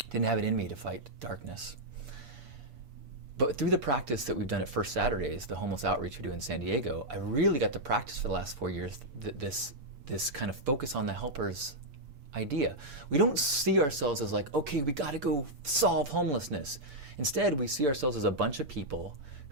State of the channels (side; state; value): left; late; 8.6 ms